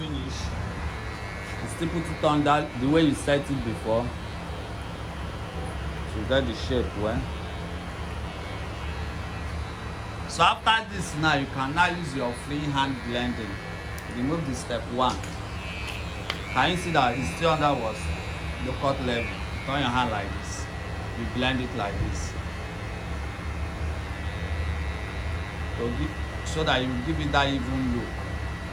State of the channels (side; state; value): both; identical; correlation 1.00